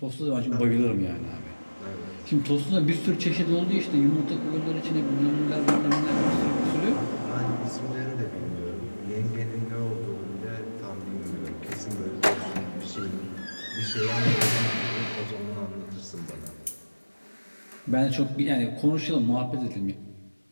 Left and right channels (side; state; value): both; inverted; correlation -1.00